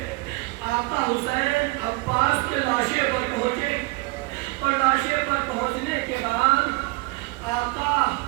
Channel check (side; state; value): left; quieter; 24.0 dB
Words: آقا حسین عباس کے لاشے پر پہنچے اور لاشے پر پہنچنے کے بعد آقا